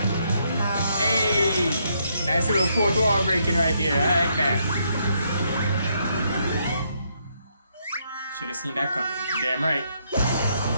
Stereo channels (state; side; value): inverted; both; correlation -0.74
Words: Hey, nice little fourth wall breaking right there. I like that. Should have seen that coming. Damn right.